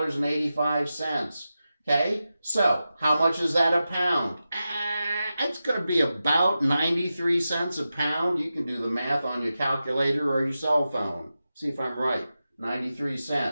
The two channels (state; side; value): inverted; both; correlation -0.92